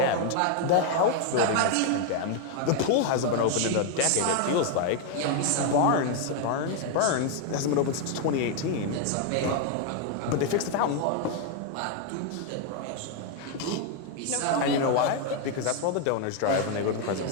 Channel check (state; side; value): different; both; correlation 0.00